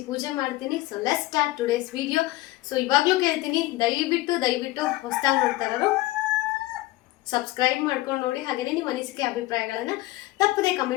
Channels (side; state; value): right; quieter; 18.5 dB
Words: ಪೂಜೆ ಮಾಡ್ತೀನಿ. So let's start today's video. So ಇವಾಗಲೂ ಕೇಳ್ತೀನಿ, ದಯವಿಟ್ಟು ಹೊಸದಾಗಿ ನೋಡ್ತಾ ಇರೋರು ಸಬ್ಸ್ಕ್ರೈಬ್ ಮಾಡ್ಕೊಂಡು ನೋಡಿ. ಹಾಗೆಯೇ ನಿಮ್ಮ ಅನಿಸಿಕೆ ಅಭಿಪ್ರಾಯಗಳನ್ನು ತಪ್ಪದೆ